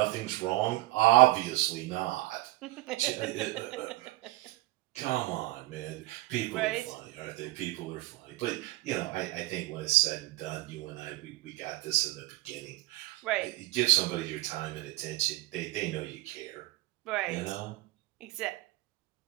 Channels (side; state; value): left; quieter; 18.3 dB